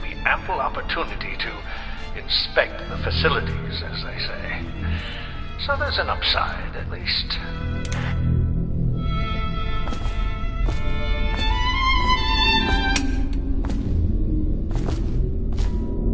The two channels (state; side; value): identical; both; correlation 1.00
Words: me ample opportunity to inspect the facilities, as they say. So there's an upside, at least.